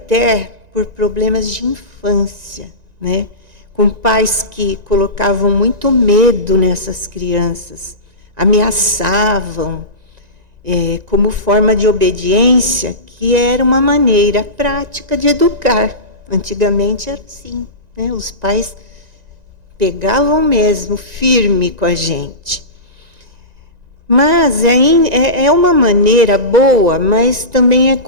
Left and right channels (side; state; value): left; late; 1.9 ms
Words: por problemas de infância, né? Com pais que colocavam muito medo nessas crianças, ameaçavam, como forma de obediência, que era uma maneira prática de educar. Antigamente era assim, né? Os pais pegavam mesmo firme com a gente. Mas é uma maneira boa, mas também é